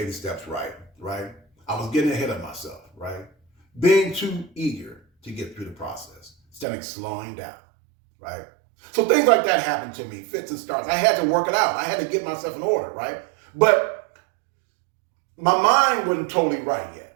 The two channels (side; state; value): left; drops out; at 6.7 s